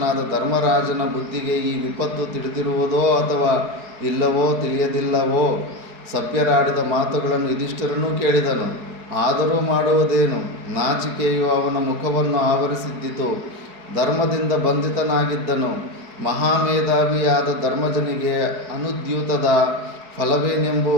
ಧರ್ಮರಾಜನ ಬುದ್ಧಿಗೆ ಈ ವಿಪತ್ತು ತಿಳಿದಿರುವುದೋ ಅಥವಾ ಇಲ್ಲವೋ ತಿಳಿಯದಿಲ್ಲವೋ? ಸಭ್ಯರಾಡಿದ ಮಾತುಗಳನ್ನು ಯುಧಿಷ್ಠಿರನೂ ಕೇಳಿದನು. ಆದರೂ ಮಾಡುವುದೇನು? ನಾಚಿಕೆಯು ಅವನ ಮುಖವನ್ನು ಆವರಿಸಿದ್ದಿತು. ಧರ್ಮದಿಂದ ಬಂಧಿತನಾಗಿದ್ದನು. ಮಹಾಮೇಧಾವಿಯಾದ ಧರ್ಮಜನಿಗೆ ಅನುದ್ಯೂತದ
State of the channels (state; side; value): late; left; 4.7 ms